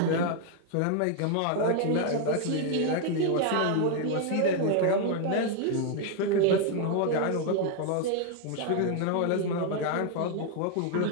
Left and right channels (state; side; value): different; both; correlation 0.01